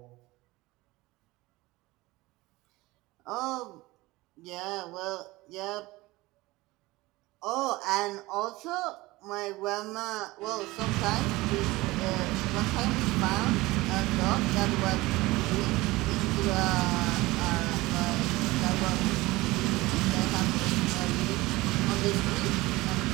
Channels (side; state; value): left; quieter; 20.2 dB